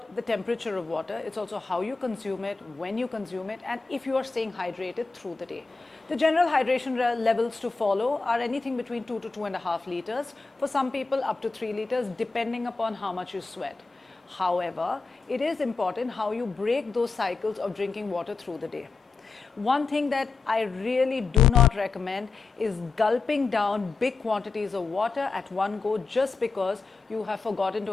the temperature of water, it's also how you consume it, when you consume it, and if you are staying hydrated through the day. The general hydration levels to follow are anything between 2 to 2.5 liters, for some people up to 3 liters, depending upon how much you sweat. However, it is important how you break those cycles of drinking water through the day. One thing that I really do not recommend is gulping down big quantities of water at one go just because you have forgotten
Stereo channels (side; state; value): right; quieter; 4.2 dB